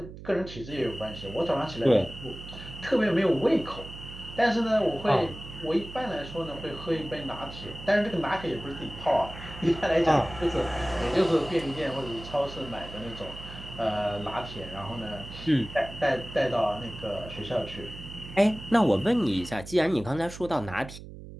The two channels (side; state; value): right; noise; hum, 14 dB below the sound